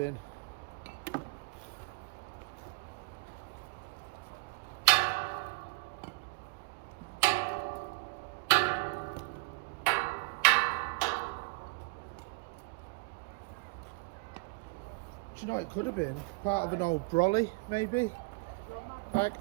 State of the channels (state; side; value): quieter; left; 30.4 dB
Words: Do you know what it could have been? Part of an old brolly, maybe? Like,